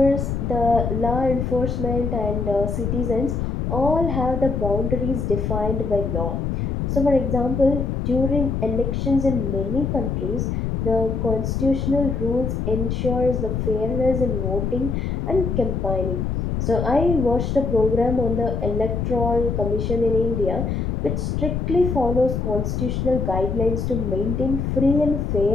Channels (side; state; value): left; noise; rumble, 1 dB below the sound